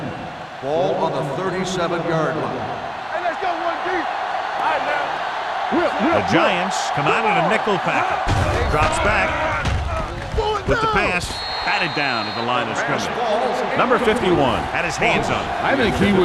Ball on the 37-yard line. Hey, let's go, 1D. All right, now. The Giants come out in a nickel package. Drops back with the pass. Batted down at the line of scrimmage. Number 51 had his hands on it. I think he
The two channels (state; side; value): identical; both; correlation 1.00